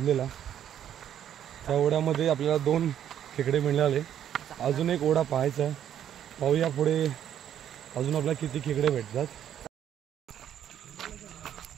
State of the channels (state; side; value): quieter; left; 10.1 dB